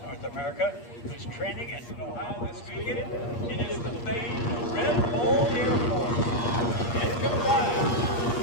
North America whose training and know-how this weekend. It is the famed Red Bull Air Force. It combines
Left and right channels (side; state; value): right; late; 8.5 ms